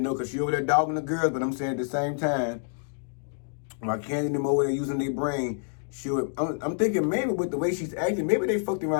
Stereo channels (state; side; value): silent; right; 60 dB below the other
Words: because she over there dogging the girls, but I'm saying at the same time, while Candy and them over there using their brain, I'm thinking maybe with the way she's acting, maybe they fucked